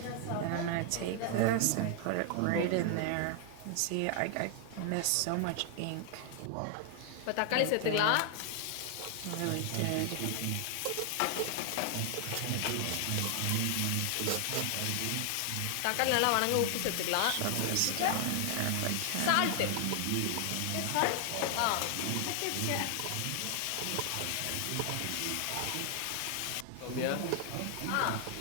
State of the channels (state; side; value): different; both; correlation 0.00